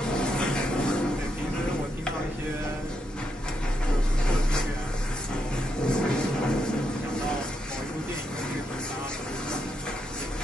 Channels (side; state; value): both; normal; correlation 0.81